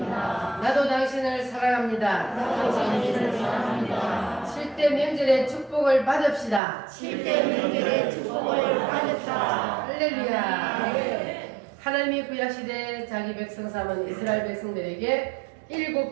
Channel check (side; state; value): left; drops out; at 6.6 s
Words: 나도 당신을 사랑합니다. 나도 당신을 사랑합니다. 7대 명절의 축복을 받읍시다. 7대 명절의 축복을 받읍시다. 할렐루야. 하나님이 구약시대 자기 백성 삼은 이스라엘 백성들에게